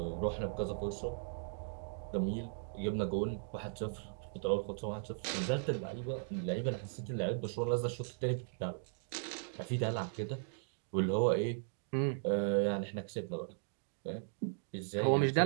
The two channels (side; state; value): left; silent; digital silence